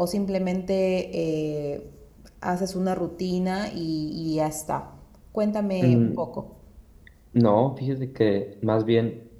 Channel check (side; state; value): both; identical; correlation 1.00